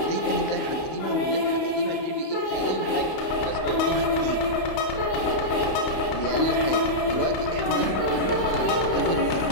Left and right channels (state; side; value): late; right; 31 ms